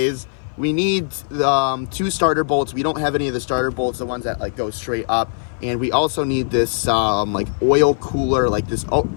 we need 2 starter bolts. We don't have any of the starter bolts, the ones that like go straight up. And we also need this like oil cooler, like this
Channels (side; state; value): right; silent; 56 dB below the other